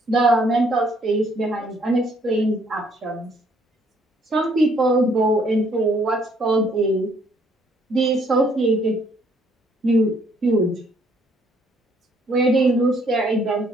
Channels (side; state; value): both; normal; correlation 0.65